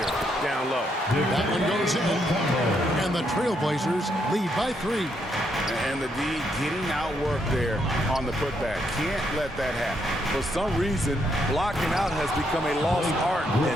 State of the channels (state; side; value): normal; both; correlation 0.76